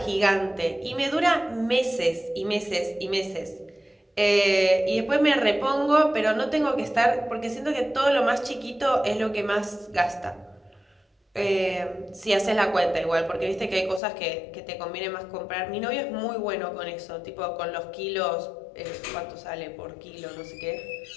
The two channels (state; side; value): drops out; right; at 14.0 s